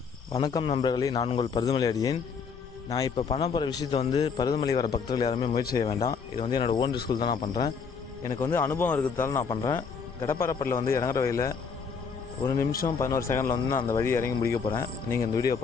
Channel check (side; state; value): right; quieter; 5.7 dB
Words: வணக்கம் நண்பர்களே, நான் உங்கள் பருதுமலை அடியேன். நான் இப்போ பண்ண போகிற விஷயத்தை பருதுமலை வர பக்தர்கள் யாருமே முயற்சி செய்ய வேண்டாம். இது என்னோடய ஓன் ரிஸ்கில் தான் நான் பண்ணுறேன். எனக்கு அனுபவம் இருக்கிறதால நான் பண்ணுறேன். கடப்பாறைப்பட்டில் இறங்குற வழியில் 1 நிமிஷம் 11 செகண்டில் நான் அந்த வழி இறங்கி முடிக்க போகிறேன். நீங்கள் இந்த வீடியோ